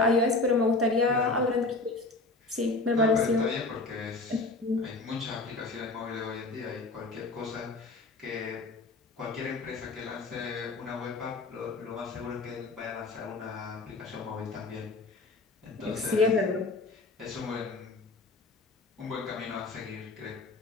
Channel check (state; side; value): quieter; right; 3.3 dB